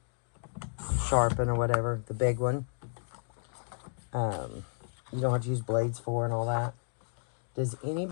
sharpen or whatever. The big one. You don't have to use blades for and all that. Does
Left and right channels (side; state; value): right; silent; digital silence